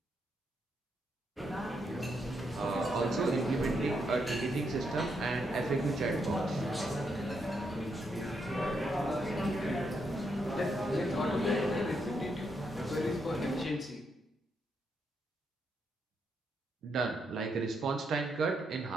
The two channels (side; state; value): both; normal; correlation 0.79